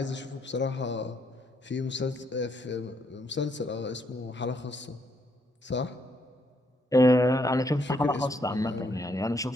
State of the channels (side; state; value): both; normal; correlation 0.73